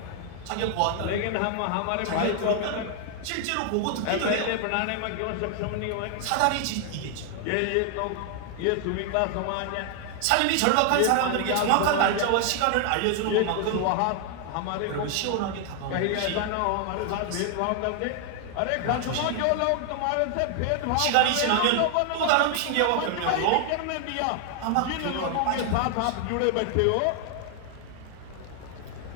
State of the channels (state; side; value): different; both; correlation 0.00